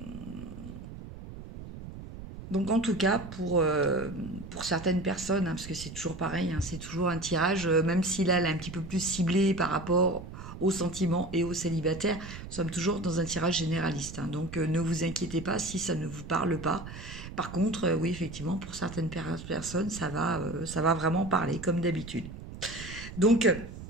Donc en tout cas, pour certaines personnes, hein, parce que c'est toujours pareil, hein, c'est toujours un tirage, même si là, elle est un petit peu plus ciblée par rapport aux sentiments et aux célibataires, nous sommes toujours dans un tirage généraliste, hein. Donc ne vous inquiétez pas si ça ne vous parle pas. Par contre, oui, effectivement, pour certaines personnes, ça va vraiment parler, comme d'habitude. Donc,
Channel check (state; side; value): noise; right; rumble, 12 dB below the sound